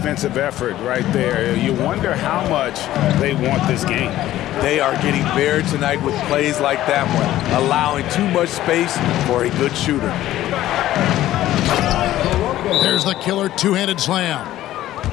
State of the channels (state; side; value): quieter; right; 14.1 dB